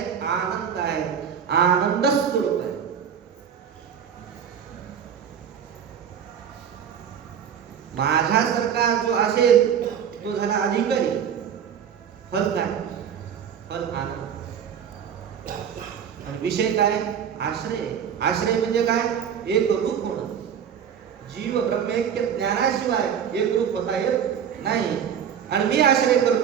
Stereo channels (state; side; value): quieter; left; 8.2 dB